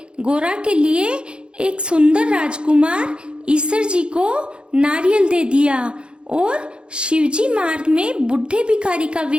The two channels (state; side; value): late; left; 0.054 ms